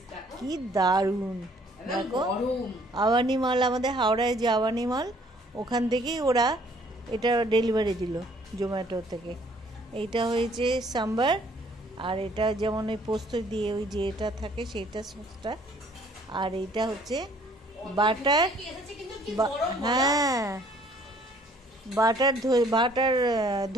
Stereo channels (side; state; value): both; normal; correlation 0.60